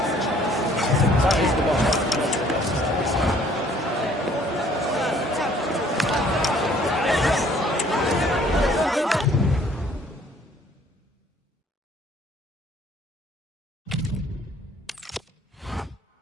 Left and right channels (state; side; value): normal; both; correlation 0.58